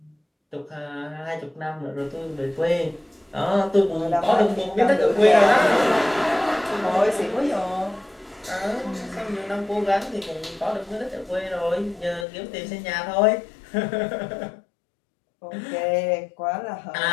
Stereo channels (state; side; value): drops out; right; at 12.2 s